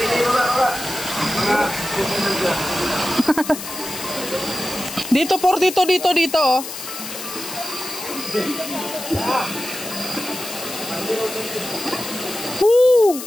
Dito por dito oh. Woo!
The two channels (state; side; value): noise; left; hiss, 9 dB below the sound